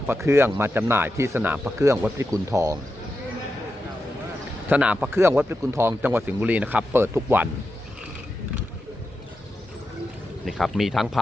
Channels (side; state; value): both; normal; correlation 0.89